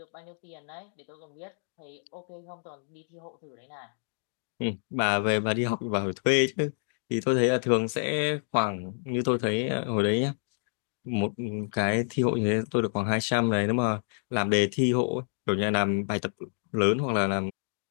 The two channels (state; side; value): silent; right; digital silence